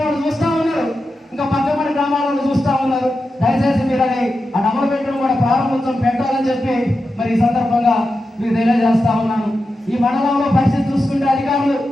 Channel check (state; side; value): normal; both; correlation 0.90